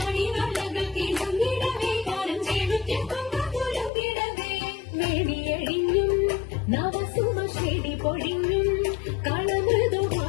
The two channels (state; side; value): drops out; right; at 3.9 s